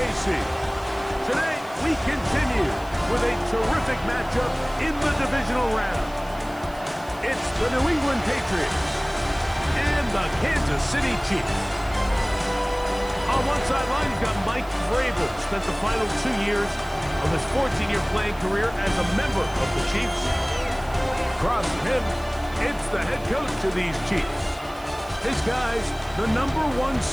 Today, we continue with a terrific matchup in the divisional round. It's the New England Patriots and the Kansas City Chiefs. On one sideline, you've got Mike Vrabel, spent the final 2 years of his 14-year playing career as a member of the Chiefs. Across from him, it's the head coach of these Chiefs. His guys, the #1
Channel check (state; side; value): noise; right; hiss, 23 dB below the sound